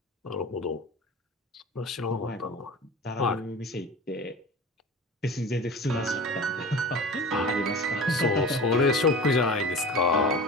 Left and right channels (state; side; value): normal; both; correlation 0.34